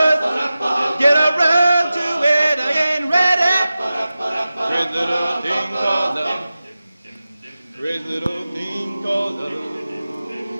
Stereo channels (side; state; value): both; inverted; correlation -0.95